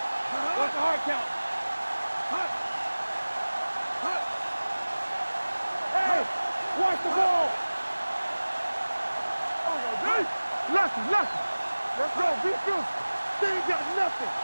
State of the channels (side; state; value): both; inverted; correlation -1.00